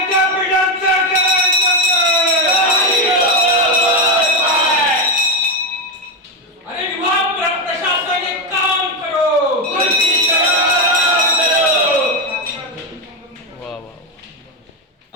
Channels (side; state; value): both; normal; correlation 0.08